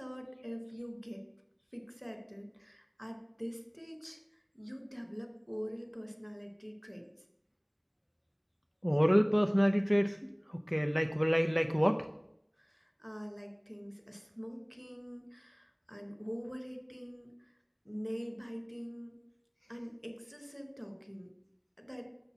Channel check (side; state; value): both; identical; correlation 1.00